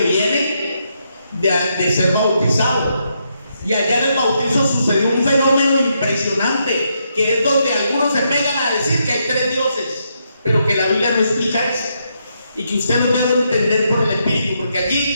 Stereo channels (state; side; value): inverted; both; correlation -0.79